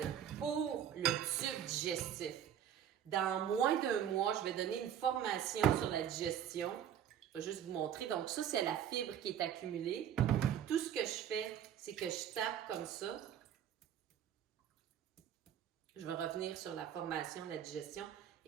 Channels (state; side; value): quieter; left; 9.5 dB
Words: pour le tube digestif. Dans moins d'1 mois, je vais donner une formation sur la digestion. Je vais juste vous montrer. Donc ça, c'est la fibre qui est accumulée. Tout ce que je fais, c'est que je tape comme ça. Je vais revenir sur la formation, la digestion.